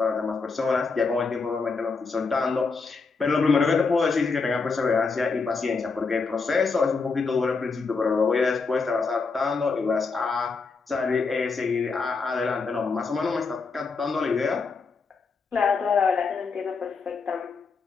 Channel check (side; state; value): right; quieter; 4.6 dB